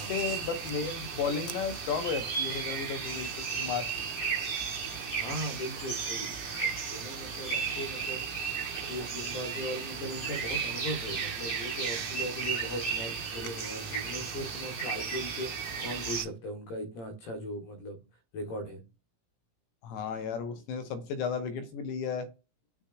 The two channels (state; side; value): late; right; 18 ms